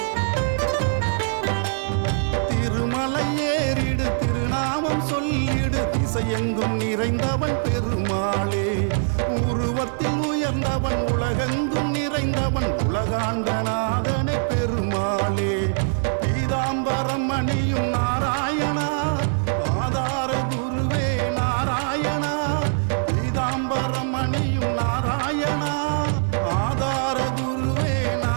திருமலை ஏறிடு திருநாமம் சொல்லிடு திசையெங்கும் நிறைந்தவன் பெருமாளே. உருவத்தில் உயர்ந்தவன் உலகெங்கும் நிறைந்தவன் உலகாண்ட நாதனே பெருமாளே. பீதாம்பரம் அணியும் நாராயணா ஆதார குருவே நாராயணா. பீதாம்பரம் அணியும் நாராயணா ஆதார குருவே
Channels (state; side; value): silent; left; 63 dB below the other